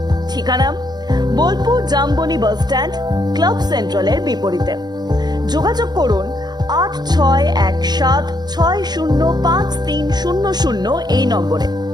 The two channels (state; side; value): late; left; 0.20 ms